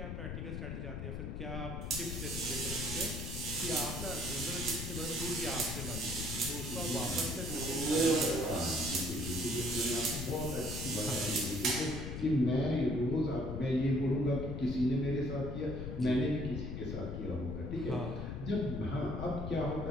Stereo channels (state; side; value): noise; left; rumble, 5 dB below the sound